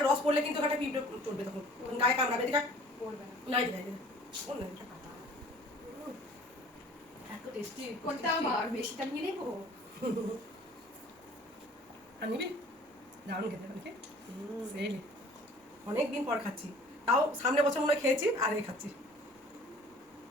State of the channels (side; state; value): both; normal; correlation 0.50